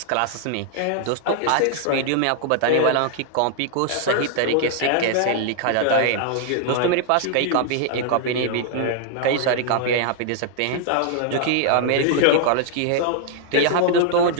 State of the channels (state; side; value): different; both; correlation 0.00